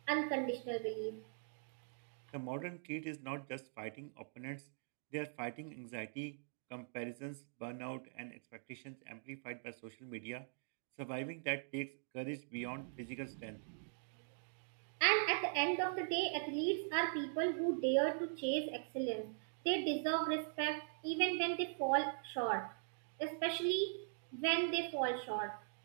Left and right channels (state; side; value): silent; left; digital silence